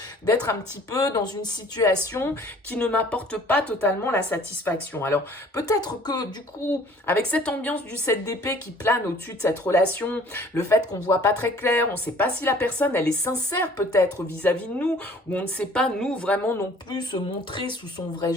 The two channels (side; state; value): both; normal; correlation 0.53